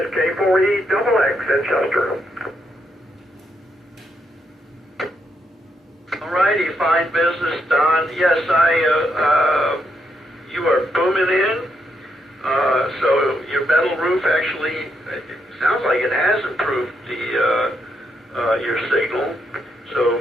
K4EXX in Chester. All righty, fine business, Don. Yes, you are booming in. So your metal roof actually, it sounds like it has improved your signal. So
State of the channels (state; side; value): normal; both; correlation 0.79